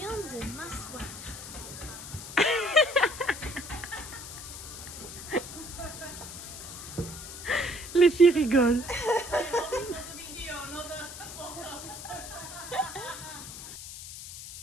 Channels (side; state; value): left; noise; hiss, 11 dB below the sound